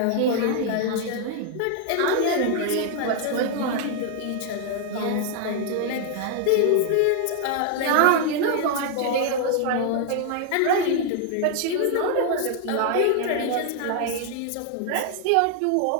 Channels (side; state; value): both; different; correlation 0.00